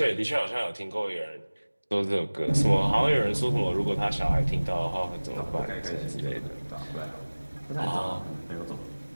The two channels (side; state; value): both; inverted; correlation -1.00